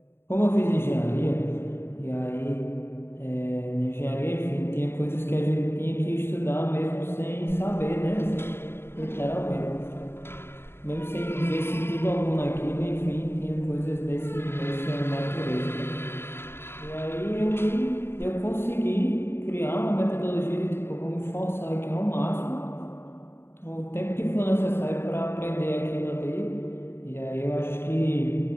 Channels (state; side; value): late; right; 0.11 ms